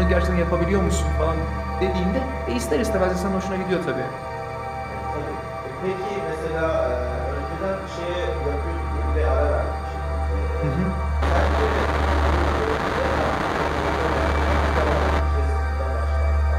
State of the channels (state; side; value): identical; both; correlation 1.00